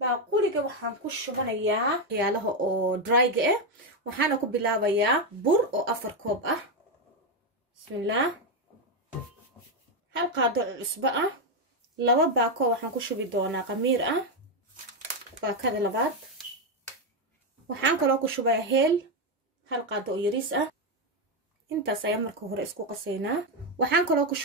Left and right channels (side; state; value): both; normal; correlation 0.06